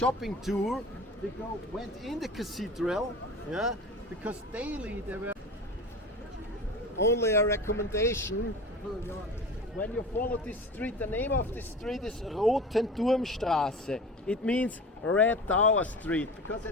tour, they went in the cathedral, yeah, because daily there were only a recommendation. When you follow this street, the name of this street is Rotenturmstraße. It means Red Tower Street, because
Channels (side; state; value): both; normal; correlation 0.34